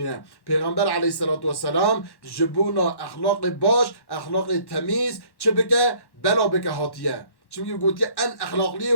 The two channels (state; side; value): late; right; 1.1 ms